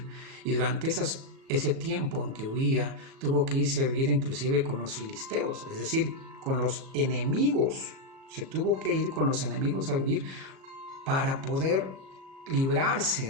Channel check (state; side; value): late; left; 37 ms